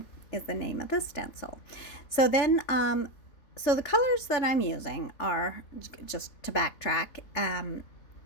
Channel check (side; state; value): right; late; 3.5 ms